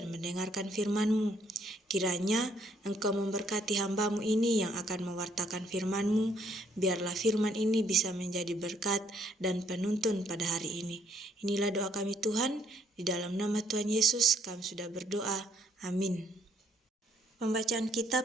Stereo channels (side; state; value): both; normal; correlation 0.68